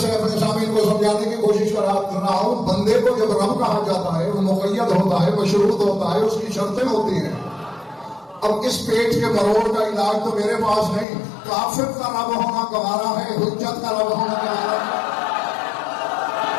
अपने सामने को समझाने की कोशिश कर रहा हूं। बंदे को जब रब कहा जाता है वो मुक़य्यद होता है, मशरूत होता है, उसकी शर्तें होती हैं। अब इस पेट के मरोड़ का इलाज तो मेरे पास नहीं, काफिर का रब होना गवारा है, हुज्जत का रब होना गवारा है।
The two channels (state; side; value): drops out; right; at 11.1 s